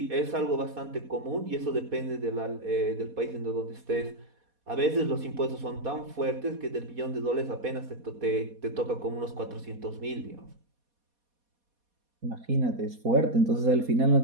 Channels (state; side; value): late; left; 4.2 ms